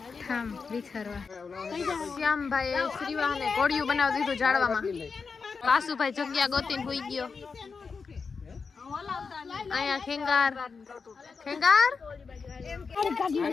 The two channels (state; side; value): quieter; right; 5.1 dB